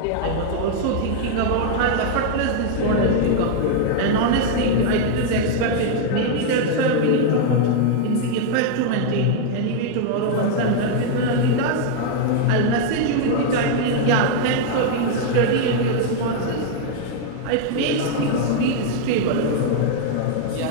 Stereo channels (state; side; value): different; both; correlation 0.00